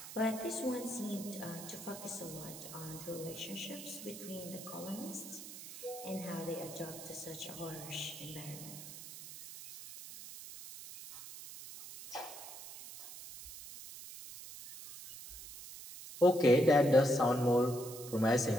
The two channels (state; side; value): noise; right; hiss, 13 dB below the sound